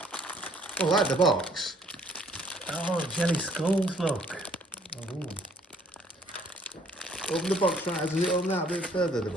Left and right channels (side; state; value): both; normal; correlation 0.62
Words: Oh, I like the box. Oh, jelly skulls, look. Oh. Open the box right, does it open that a bit further, the